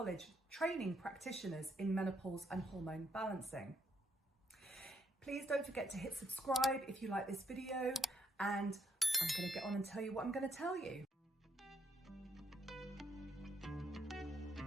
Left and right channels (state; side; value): normal; both; correlation 0.73